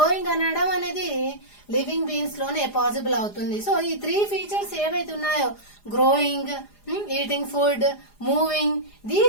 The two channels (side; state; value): right; late; 4.9 ms